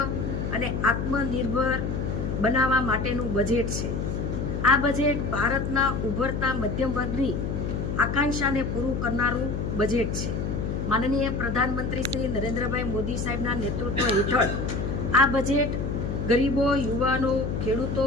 અને આત્મનિર્ભર બનાવવા માટેનું બજેટ છે. આ બજેટ ભારતના ઉભરતા મધ્યમ વર્ગની આકાંક્ષાને પૂરું કરનારું બજેટ છે. માનનીય પ્રધાનમંત્રી શ્રી નરેન્દ્રભાઈ મોદી સાહેબના નેતૃત્વ હેઠળ આ બજેટ ગરીબો, યુવાનો, ખેડૂતો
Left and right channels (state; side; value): noise; left; hum, 2 dB below the sound